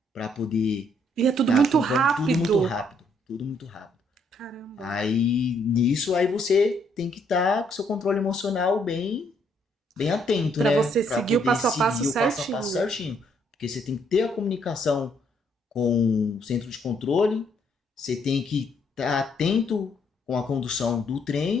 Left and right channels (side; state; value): both; normal; correlation 0.70